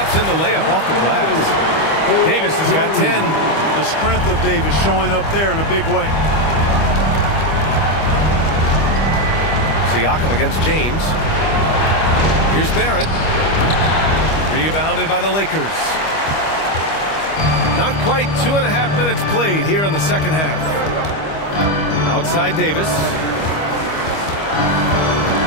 in the layup off the glass. Davis has got 10. The strength of Davis showing up there in a big way. Siakam against James. Here's Barrett. Rebounded by the Lakers. Not quite 2.5 minutes played here in the second half. Outside Davis.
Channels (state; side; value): late; right; 25 ms